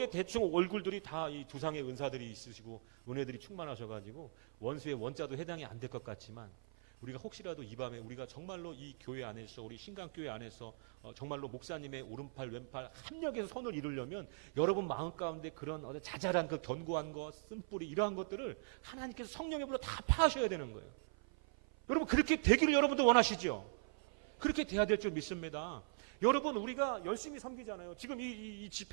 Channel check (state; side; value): silent; left; 51 dB below the other